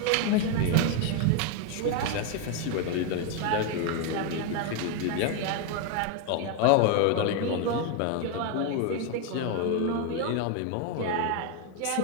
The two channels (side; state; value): both; different; correlation 0.01